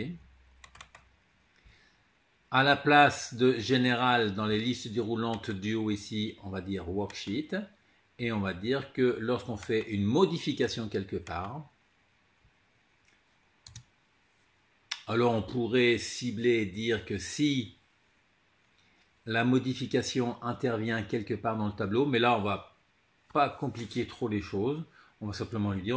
À la place de général dans les listes déroulantes du haut ici, on va dire worksheet. Et on va dire que lorsqu'on fait une modification quelque part, Alors on pourrait cibler et dire que si la modification intervient quelque part dans le tableau, mais là on va pas compliquer trop les choses, on va simplement lui dire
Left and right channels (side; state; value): both; identical; correlation 1.00